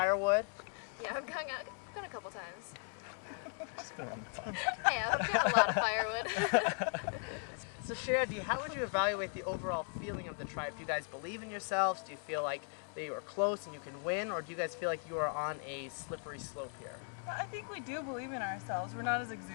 Yeah, I've gone a couple times. Just been on the phone. Yeah, I've got a lot of firewood. So Shandy, how would you evaluate the overall feeling of the tribe? Do you guys believe in yourselves? Do you feel like they are close and you can win? Or do you guys feel like you are on a slippery slope here? I think we do believe in ourselves. We're not as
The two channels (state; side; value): silent; right; 53 dB below the other